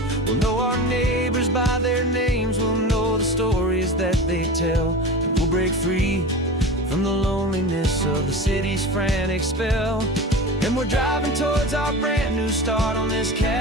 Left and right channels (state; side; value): normal; both; correlation 0.31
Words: We'll know our neighbors by their names, we'll know the stories that they tell, and we'll break free from the loneliness of the city's frantic spell. And we're driving towards our brand new start on this